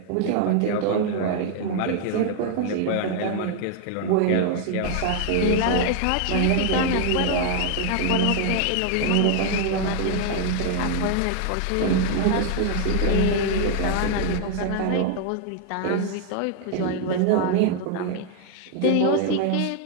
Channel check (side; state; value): both; different; correlation 0.00